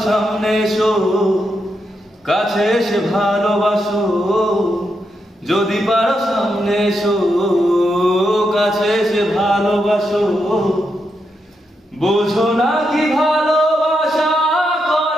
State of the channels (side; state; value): both; normal; correlation 0.83